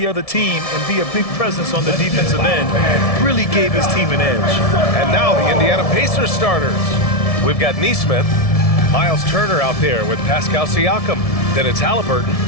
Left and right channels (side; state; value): right; late; 1.7 ms